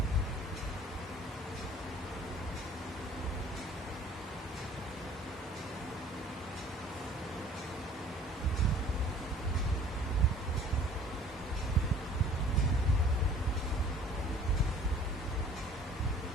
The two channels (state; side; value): normal; both; correlation 0.51